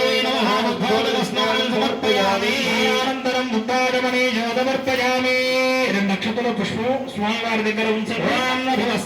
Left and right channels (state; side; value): identical; both; correlation 1.00